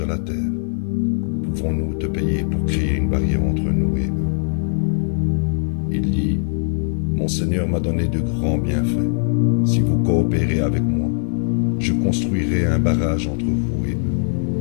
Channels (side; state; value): right; silent; 65 dB below the other